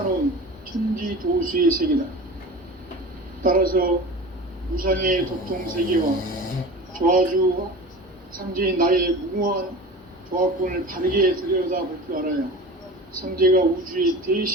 천지 도수의 세계다. 따라서 무상의 도통 세계와 조화주 상제인 나의 무궁한 조합권을 바르게 들여다볼 줄 알아야 상제가 우주의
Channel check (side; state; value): both; normal; correlation 0.34